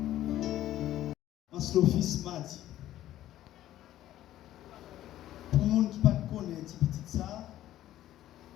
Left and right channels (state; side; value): quieter; right; 13.3 dB